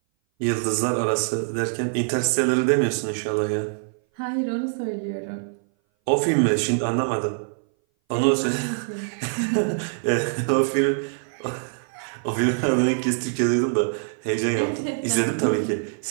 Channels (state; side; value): silent; left; 59 dB below the other